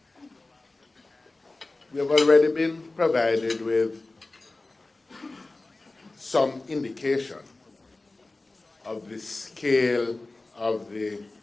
We have already been provided with some indication of the scale of the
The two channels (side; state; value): right; quieter; 3.1 dB